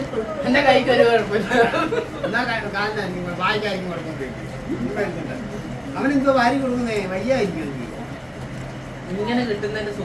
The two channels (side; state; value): both; identical; correlation 1.00